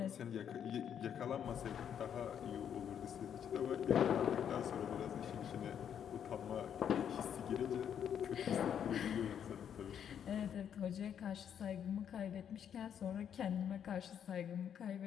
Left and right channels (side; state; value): right; quieter; 8.7 dB